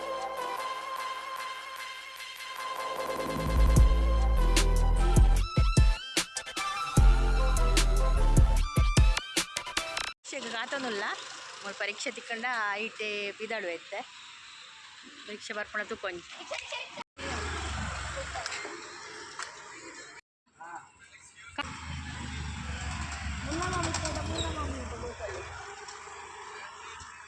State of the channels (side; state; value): both; identical; correlation 1.00